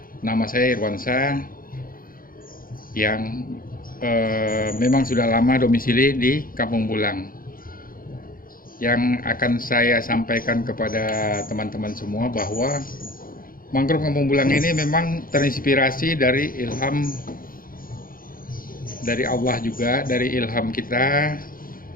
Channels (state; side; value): late; right; 0.41 ms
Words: Nama saya Irwansyah yang memang sudah lama domisili di Kampung Bulang. Yang akan saya sampaikan kepada teman-teman semua bahwa mangrove Kampung Bulang ini memang terinspirasi dari ilham dari Allah juga, dari ilham kita,